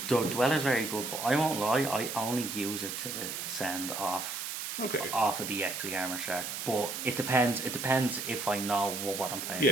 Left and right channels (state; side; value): noise; right; hiss, 5 dB below the sound